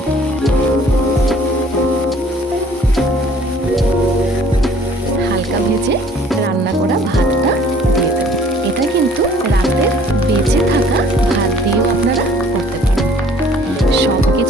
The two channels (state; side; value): normal; both; correlation 0.54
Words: হালকা ভেজে রান্না করা ভাতটা দিয়ে দেব। এটা কিন্তু রাতের বেঁচে থাকা ভাত দিয়েও আপনারা করতে পারেন। সব